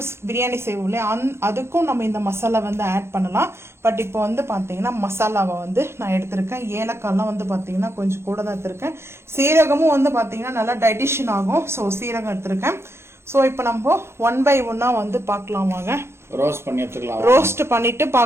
பிரியாணி செய்வோம் இல்லையா, அதுக்கும் நம்ம இந்த மசாலா வந்து ஆட் பண்ணலாம். பட் இப்போ வந்து பார்த்தீங்கன்னா மசாலாவை வந்து நான் எடுத்திருக்கேன். ஏலக்காய்லாம் வந்து பார்த்தீங்கன்னா கொஞ்சம் கூட தான் எடுத்திருக்கேன். சீரகமும் வந்து பார்த்தீங்கன்னா நல்லா டைஜஷன் ஆகும். ஸோ சீரகம் எடுத்திருக்கேன். ஸோ இப்போ நம்ம 1 by 1 வந்து பார்க்கலாம் வாங்க. ரோஸ்ட் பண்ணிட்டு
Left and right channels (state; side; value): late; left; 0.12 ms